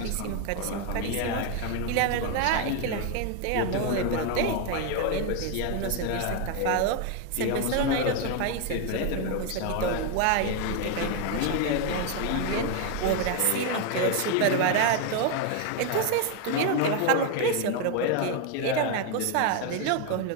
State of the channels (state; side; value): different; both; correlation 0.01